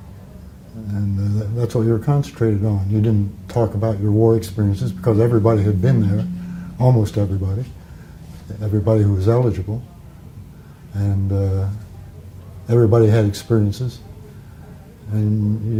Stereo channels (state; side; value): identical; both; correlation 1.00